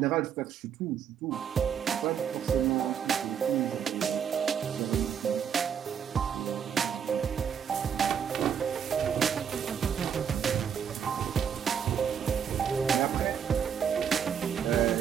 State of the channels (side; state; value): left; quieter; 7.8 dB